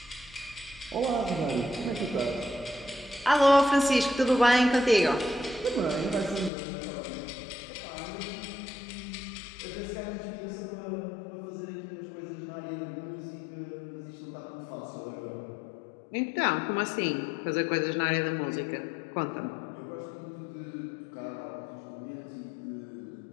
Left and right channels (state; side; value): drops out; right; at 6.5 s